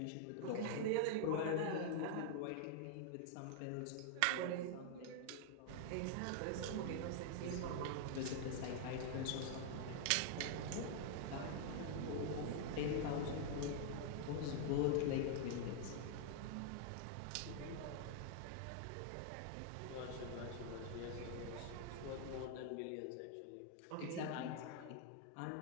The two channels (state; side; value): different; both; correlation 0.00